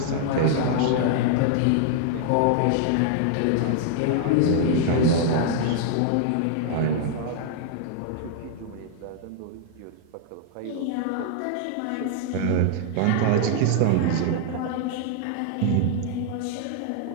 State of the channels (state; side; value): different; both; correlation -0.01